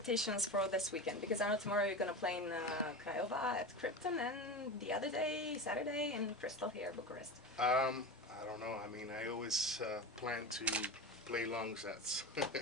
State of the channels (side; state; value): both; normal; correlation 0.25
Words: for this weekend? Because I know tomorrow you're gonna play in Craiova at Krypton, and the other day, Saturday, in Crystal here, Bucharest. I don't know. I mean, I always plan to play long sets.